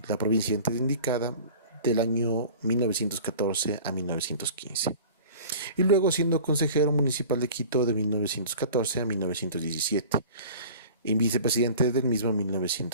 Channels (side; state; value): both; inverted; correlation -0.41